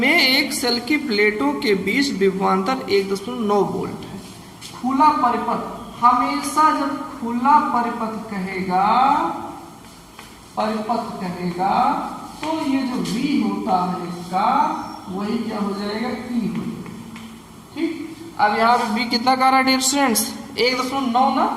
एक सेल की प्लेटों के बीच विभवांतर 1.9 वोल्ट है। खुला परिपथ, हमेशा जब खुला परिपथ कहेगा तो ये जो V होता है इसका वही क्या हो जाएगा E हो जाएगा। ठीक, अब यहाँ पे B कितना का रहा है डियर स्टूडेंट्स 1.9 ना,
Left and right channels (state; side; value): identical; both; correlation 1.00